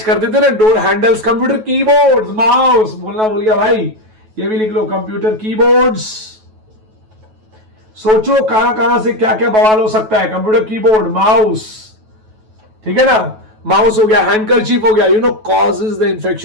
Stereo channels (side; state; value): left; late; 9.2 ms